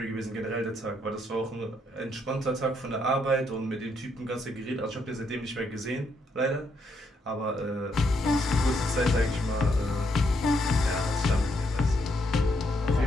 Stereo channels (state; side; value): normal; both; correlation 0.75